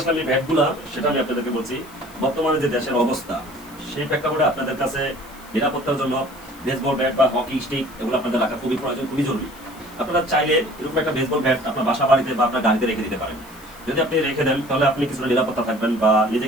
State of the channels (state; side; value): noise; left; hiss, 22 dB below the sound